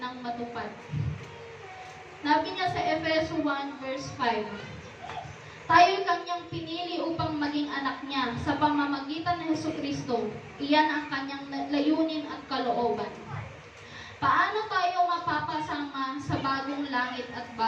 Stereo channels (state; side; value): identical; both; correlation 1.00